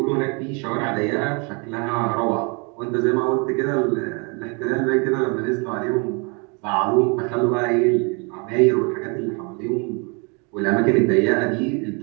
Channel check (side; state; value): left; quieter; 32.6 dB